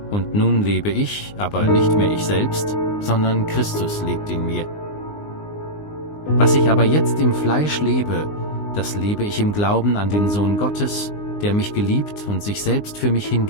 Und nun lebe ich, aber nicht mehr ich selbst, sondern Christus lebt in mir. Was ich aber jetzt im Fleisch lebe, das lebe ich im Glauben an den Sohn Gottes, der mich geliebt und sich selbst für mich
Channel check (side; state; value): right; late; 19 ms